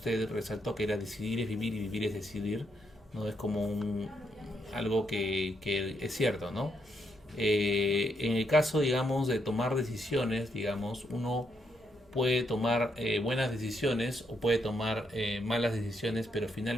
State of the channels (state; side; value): normal; both; correlation 0.78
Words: resaltó, que era decidir es vivir y vivir es decidir, ¿no? Es como algo que es cierto, ¿no? En el caso, digamos, de tomar decisiones, digamos, uno puede tomar buenas decisiones o puede tomar malas decisiones, pero